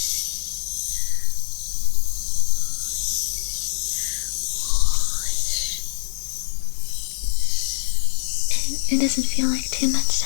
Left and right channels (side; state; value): right; silent; digital silence